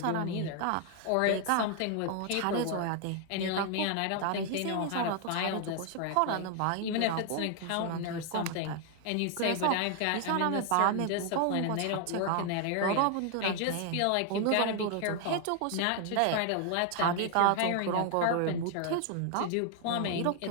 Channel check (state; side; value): different; both; correlation 0.00